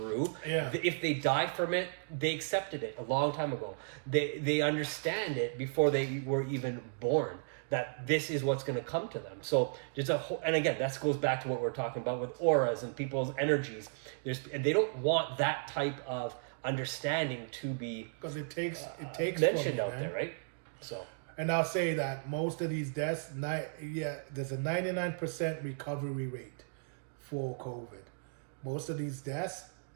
Yeah. If they die from it, they accepted it a long time ago. They understand it before they were even born. that this is what's going to come to them. So there's a whole, and again, that goes back to what we're talking about with auras and people's energies. And they don't want that type of understanding to be because it takes mentioned out man. there, right? So, and I'll say that most of these deaths, there's a 99% recovery rate for COVID. Most of these deaths,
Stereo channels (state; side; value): silent; left; digital silence